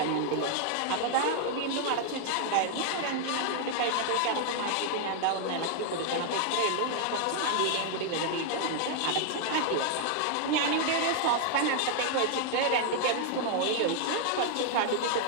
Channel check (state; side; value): different; both; correlation 0.00